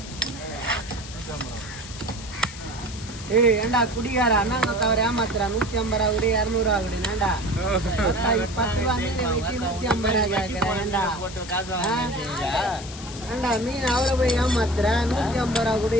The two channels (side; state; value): left; noise; hiss, 14 dB below the sound